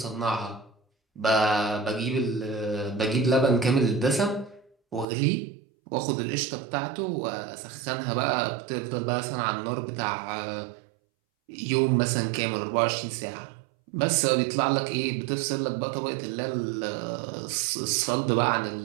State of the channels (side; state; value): left; drops out; at 5.1 s